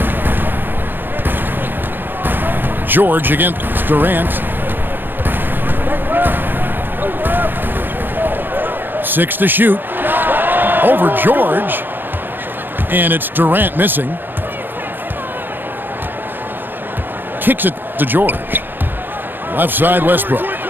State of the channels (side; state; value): left; late; 0.095 ms